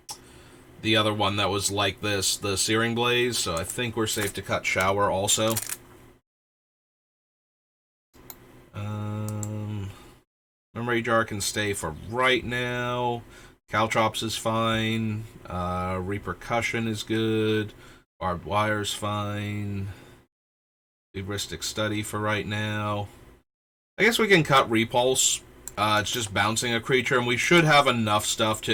other one that was like this, the Searing Blaze, so I think we're safe to cut Shower also. Memory Jar can stay for right now. Caltrops is fine. Repercussion is good. Barbed Wire's fine. Heuristic Study for right now. I guess we can cut Repulse. It's just bouncing a creature, and we should have enough stuff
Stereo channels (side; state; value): both; identical; correlation 1.00